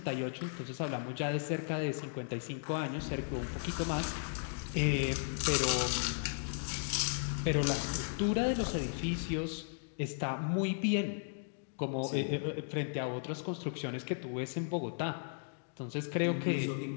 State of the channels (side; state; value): right; silent; digital silence